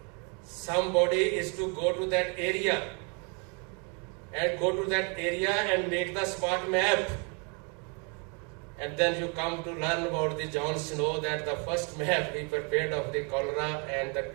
somebody is to go to that area and make the smart map. And then you come to learn about the John Snow, that the first map he prepared of the cholera and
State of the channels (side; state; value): left; quieter; 35.0 dB